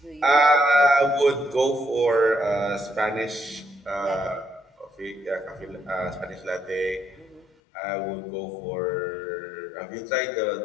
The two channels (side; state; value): right; drops out; at 7.5 s